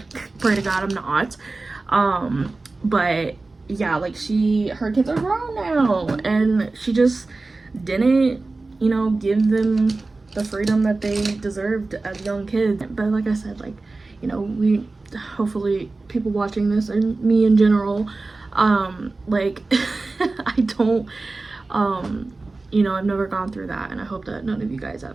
Pray to God I'm not. But yeah, like, her kids are grown now, and she just didn't, you know, give them the freedom that they deserved as young kids. But like I said, like, you know, we hopefully people watching this, and me in general, like I don't, you know, I've never gone through that, and I hope that none of you guys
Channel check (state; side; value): quieter; left; 3.4 dB